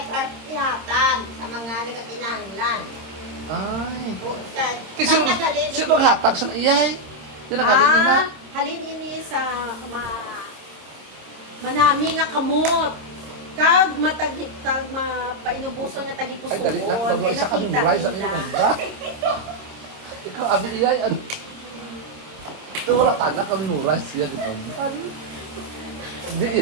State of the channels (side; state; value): left; late; 26 ms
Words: ihatag sa mga nagkakinahanglan. ay. O, sa, Kasi naghalin. sino hatag sa iyay? Sino hatag na? Halin ini sa manami nga kamot. Kag matagitag mapainubuso nga tagipusoon kay nakita nila. Ikaw abi iyay ano? Wala tanak ang nuras yan ito. Di